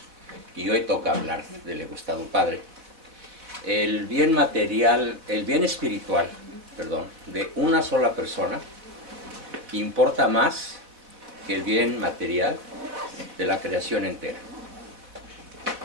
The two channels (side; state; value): left; late; 4.1 ms